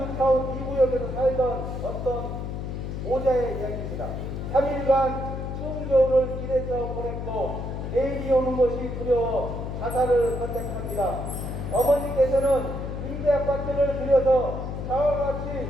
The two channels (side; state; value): left; noise; hum, 5 dB below the sound